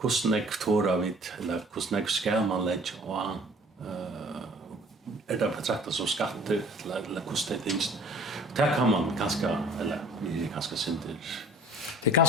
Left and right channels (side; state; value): both; normal; correlation 0.51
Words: tåra vid eller kostnader ska man lägga och är det betraktat som skatter eller kostnader inte. Det kan man ganska eller det är ganska synder. Det är